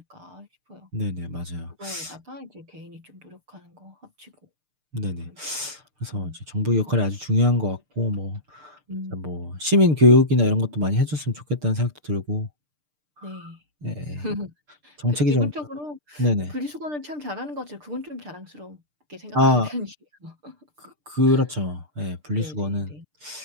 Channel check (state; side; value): late; left; 6.7 ms